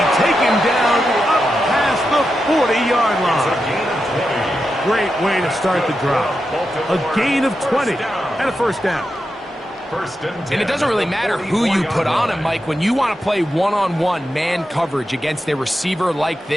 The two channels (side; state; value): both; normal; correlation 0.88